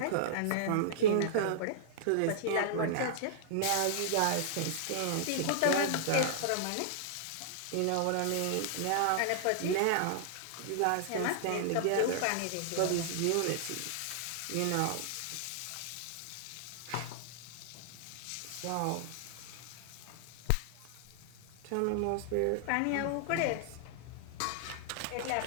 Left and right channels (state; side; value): different; both; correlation -0.01